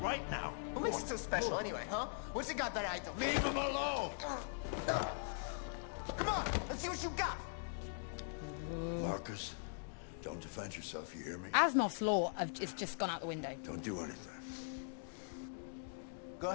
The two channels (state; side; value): silent; right; digital silence